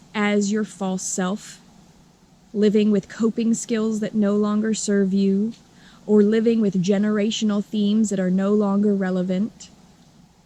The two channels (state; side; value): identical; both; correlation 1.00